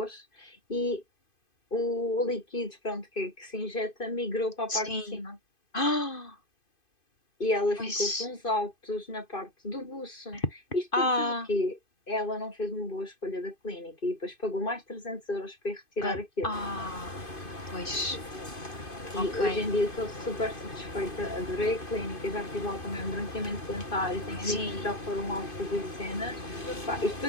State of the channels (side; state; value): right; late; 2.5 ms